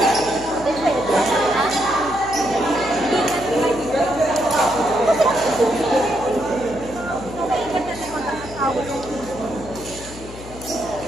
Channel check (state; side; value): noise; left; hum, 15 dB below the sound